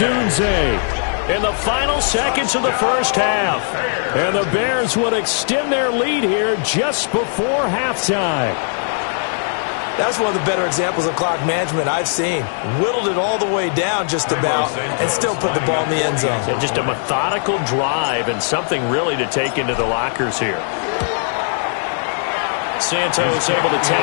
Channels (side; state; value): right; silent; digital silence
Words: in the final seconds of the first half. And the Bears would extend their lead here just before halftime. That's one of the better examples of clock management I've seen. Whittled it all the way down just about and still put the ball in the end zone. Yeah, just a methodical drive and something really to take into the lockers here. Santos able to